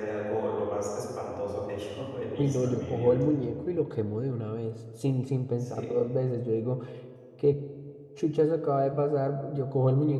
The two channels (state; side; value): identical; both; correlation 1.00